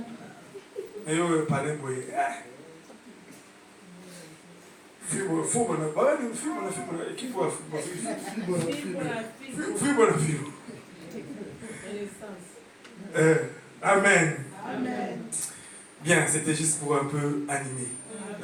Et eux, parlez pour eux. Amen. Amen. Bien, c'était juste pour un peu animer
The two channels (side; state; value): both; identical; correlation 1.00